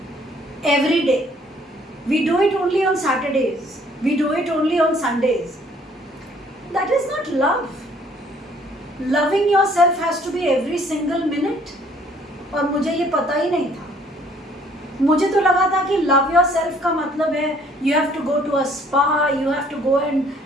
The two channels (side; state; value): both; normal; correlation 0.60